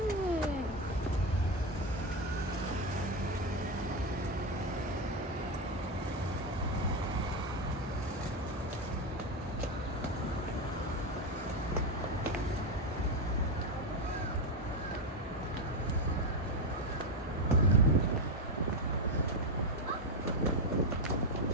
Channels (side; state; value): both; normal; correlation 0.11